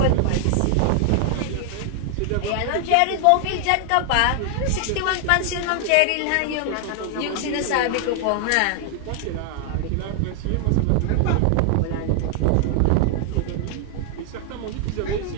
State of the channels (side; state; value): both; different; correlation 0.00